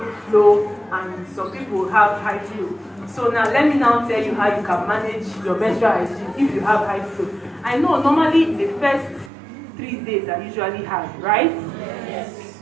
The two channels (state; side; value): drops out; left; at 9.3 s